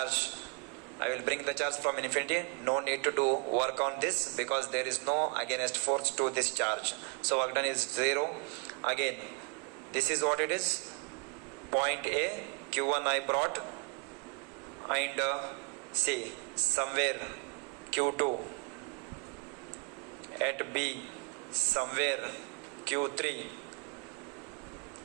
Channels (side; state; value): left; quieter; 32.2 dB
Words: bring the charge from infinity. No need to do work on this because there is no against force to this charge. So work done is 0. Again, this is what it is. Point A, Q1 I brought, and see somewhere Q2 at B, somewhere Q3